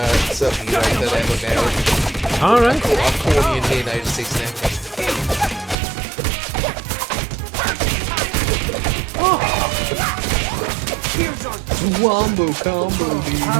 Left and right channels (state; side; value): drops out; left; at 5.8 s